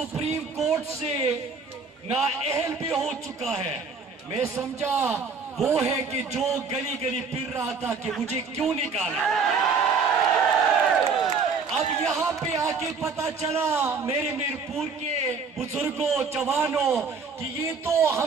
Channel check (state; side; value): quieter; left; 5.0 dB